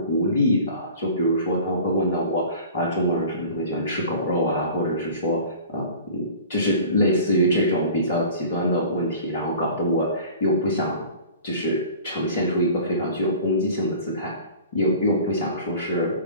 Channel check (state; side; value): inverted; both; correlation -0.42